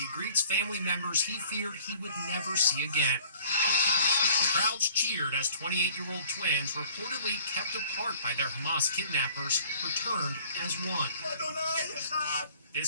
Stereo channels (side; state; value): both; inverted; correlation -0.52